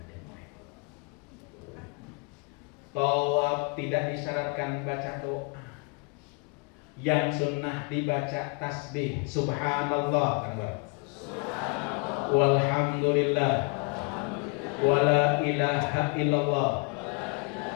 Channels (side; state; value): right; quieter; 32.2 dB